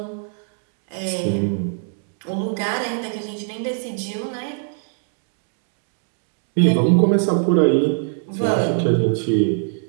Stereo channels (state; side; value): silent; left; digital silence